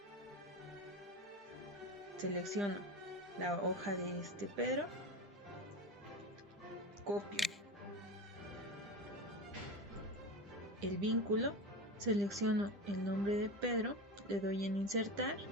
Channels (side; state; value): both; normal; correlation 0.24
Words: Selecciono la hoja de este Pedro. Copio el vínculo. Selecciono el nombre de Pedro. Le doy en insertar.